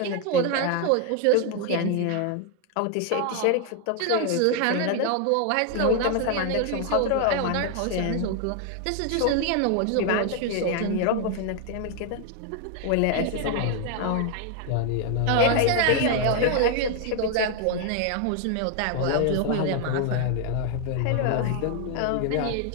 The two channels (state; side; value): different; both; correlation 0.00